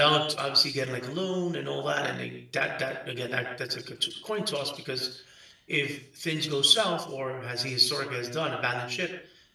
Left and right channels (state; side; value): identical; both; correlation 1.00